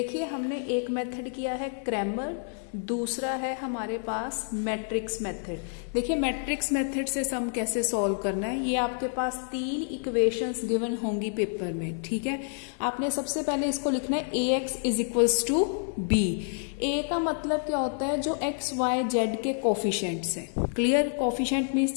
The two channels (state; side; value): silent; right; 59 dB below the other